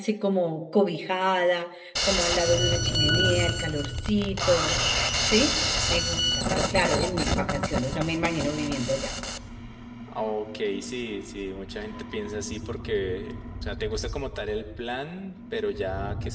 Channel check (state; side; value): identical; both; correlation 1.00